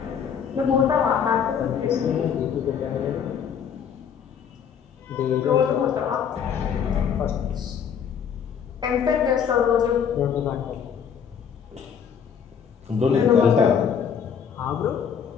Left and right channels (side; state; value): right; quieter; 7.6 dB